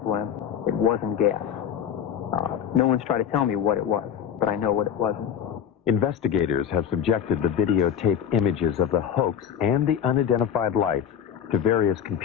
It wasn't gas. No one's tried to tell me what it was, but I know what it wasn't. Investigators have subjected the videotape images of the hoax and the unidentified lights to various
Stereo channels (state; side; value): quieter; right; 8.7 dB